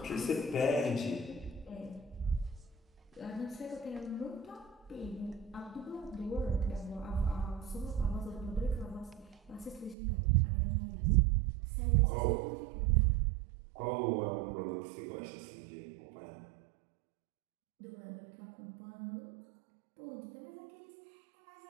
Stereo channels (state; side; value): drops out; left; at 10.0 s